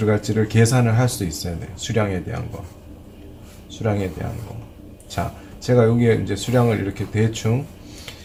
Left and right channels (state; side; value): identical; both; correlation 1.00